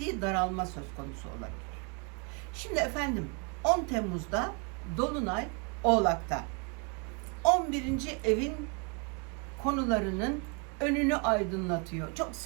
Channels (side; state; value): left; quieter; 33.3 dB